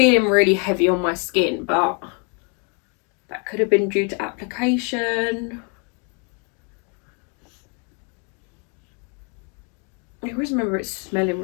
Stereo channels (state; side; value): quieter; right; 37.0 dB